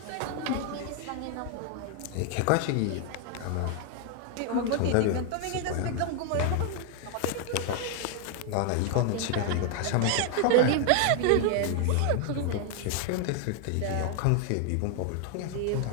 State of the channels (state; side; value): different; both; correlation 0.00